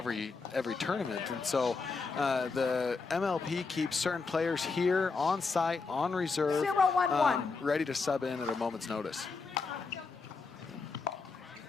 tournament, and so the MLP keeps certain players here on site, on reserve, 0-1-1. ready to sub in at a moment's notice.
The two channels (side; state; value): right; quieter; 4.4 dB